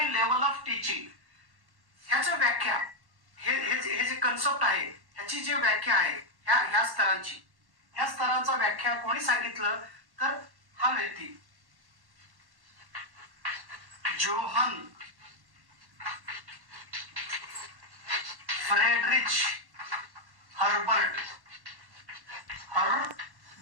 लेवल ऑफ टीचिंग, ह्याची व्याख्या, हे जे कन्सेप्ट आहे ह्याची जी व्याख्या आहे ह्या स्तरांची, ह्या स्तरांचा व्याख्या कोणी सांगितलं तर हा व्यक्ती जोहन फ्रेडरिच हर्बर्ट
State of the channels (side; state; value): left; late; 1.1 ms